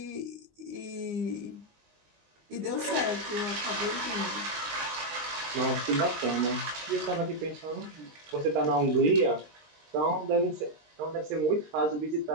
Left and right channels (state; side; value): late; left; 19 ms